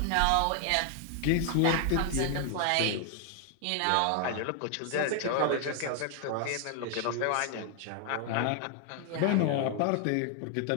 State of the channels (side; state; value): both; different; correlation 0.00